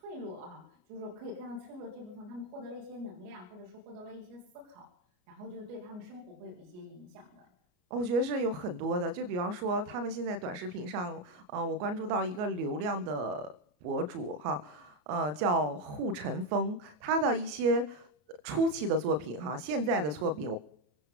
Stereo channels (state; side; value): late; left; 33 ms